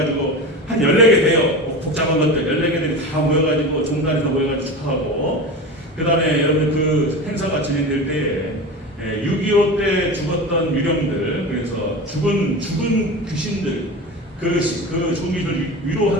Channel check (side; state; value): both; normal; correlation 0.28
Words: 한 14개 돼요. 복잡한 것들 14개들이 다 모여가지고 종단이 다 모여가지고 축하하고, 그 다음에 여러분들 그 행사가 진행될 때에 6.25 때 죽었던 유령들, 그래서 죽은 귀신들, 그 종이를